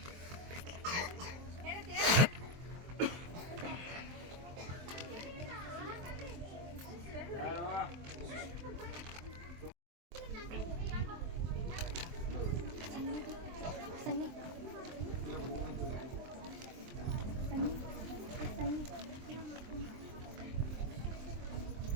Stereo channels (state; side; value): late; left; 23 ms